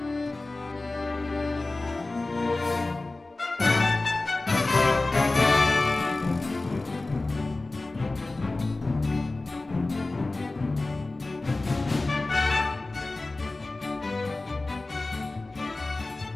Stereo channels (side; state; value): right; quieter; 3.1 dB